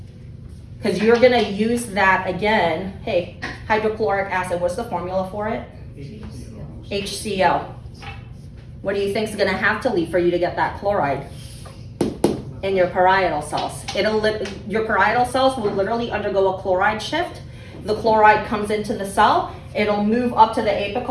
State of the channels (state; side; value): identical; both; correlation 1.00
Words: Because you're going to use that again. Hey, hydrochloric acid, what's the formula for it? HCl. What do you think is going to have to leave for you to get that chloride? In your parietal cells. Your parietal cells will literally undergo a chloride shift. The chloride comes into the cell, it'll move up to the